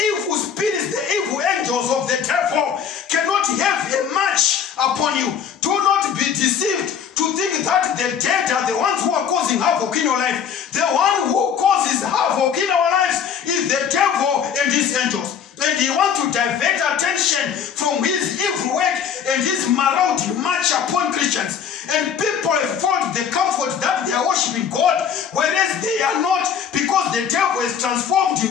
spirits, the evil angels of the devil cannot have a march upon you. Do not be deceived to think that the dead are the ones who are causing havoc in your life. The one who causes havoc in our lives is the devil and his angels. And he wants to divert attention from his evil work and his marauding march upon Christians. And people have found the comfort that they are worshiping God, whereas they are not, because the devil has transformed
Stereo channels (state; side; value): quieter; right; 7.7 dB